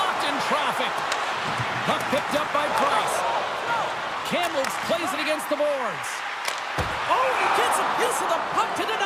in traffic. Puck picked up by Price. Kamloops plays it against the boards. Oh, he gets a piece of the puck to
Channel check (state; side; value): identical; both; correlation 1.00